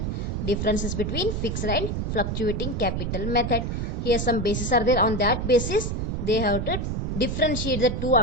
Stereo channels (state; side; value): noise; right; rumble, 2 dB below the sound